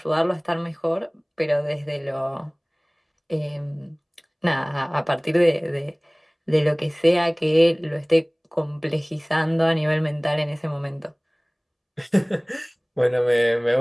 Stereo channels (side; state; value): both; identical; correlation 1.00